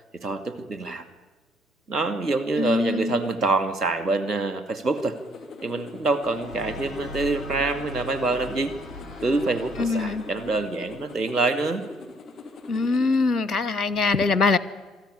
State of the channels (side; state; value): both; normal; correlation 0.65